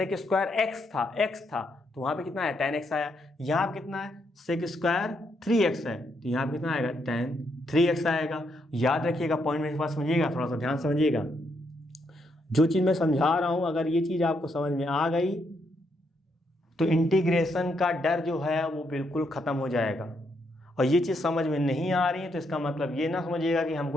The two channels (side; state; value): both; normal; correlation 0.77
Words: स्क्वायर x था तो वहाँ पे कितना है tan x आया। यहाँ पे कितना है सेक स्क्वायर 3x है, तो यहाँ पे कितना आएगा tan 3x आएगा। याद रखिएगा, पॉइंट मेरे पास समझिएगा, थोड़ा सा ध्यान समझिएगा। जो चीज़ मैं समझा रहा हूँ अगर ये चीज़ आपको समझ में आ गई तो इंटीग्रेशन का डर जो है वो बिल्कुल ख़त्म हो जाएगा। और ये चीज़ समझ में नहीं आ रही है तो इसका मतलब ये ना समझिएगा कि